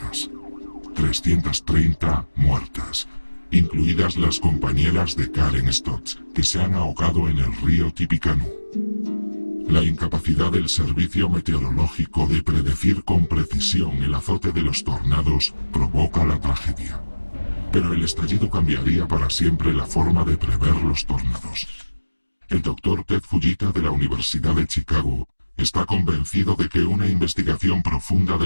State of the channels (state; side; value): inverted; both; correlation -1.00